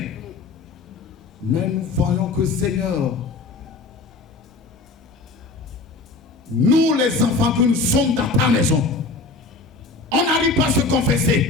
Mais nous voyons que, Seigneur, nous les enfants que nous sommes dans ta maison, on n'arrive pas à se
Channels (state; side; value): quieter; right; 3.8 dB